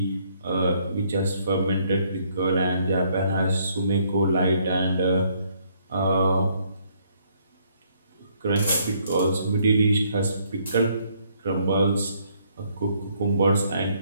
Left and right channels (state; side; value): inverted; both; correlation -0.68